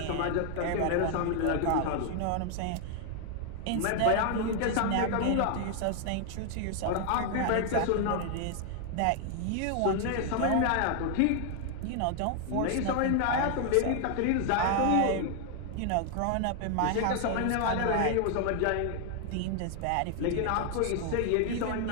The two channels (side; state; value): both; different; correlation 0.00